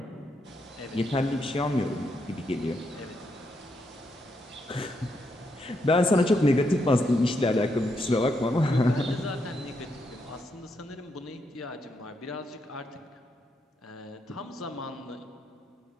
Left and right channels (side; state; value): both; normal; correlation 0.80